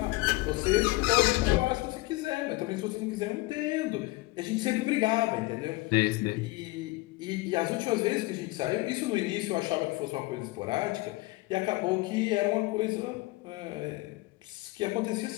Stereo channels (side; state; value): right; quieter; 21.7 dB